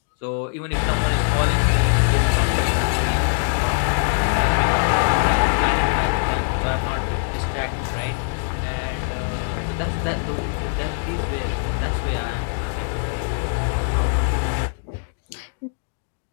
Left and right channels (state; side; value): silent; right; 62 dB below the other